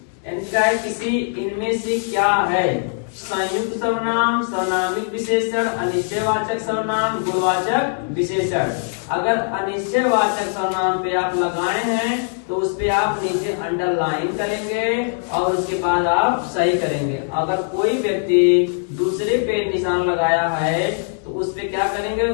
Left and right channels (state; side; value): silent; right; digital silence